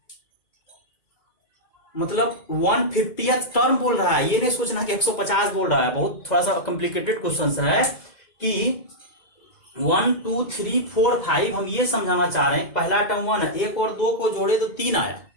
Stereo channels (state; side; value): late; right; 2.0 ms